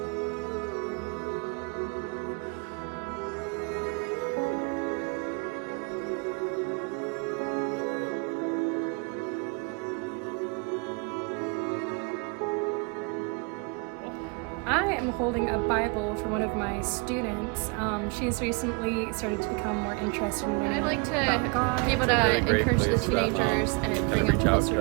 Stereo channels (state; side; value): quieter; left; 32.5 dB